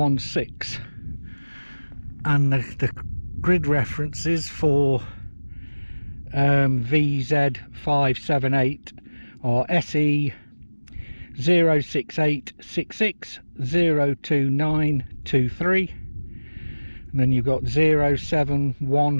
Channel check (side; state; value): both; inverted; correlation -1.00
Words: and the grid references for vz518 are SE 06866 02923, and then you've got